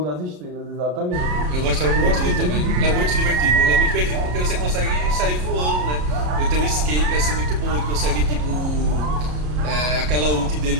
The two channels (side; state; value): left; late; 33 ms